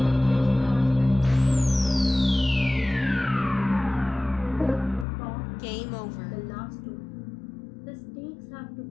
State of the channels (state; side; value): drops out; right; at 5.1 s